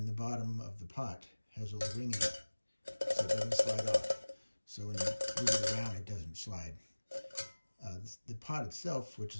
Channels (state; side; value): inverted; both; correlation -1.00